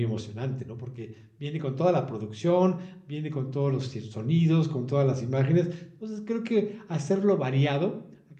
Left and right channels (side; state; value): both; identical; correlation 1.00